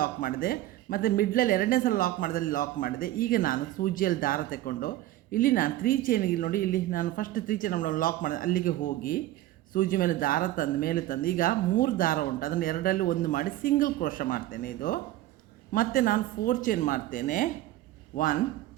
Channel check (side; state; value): left; quieter; 15.0 dB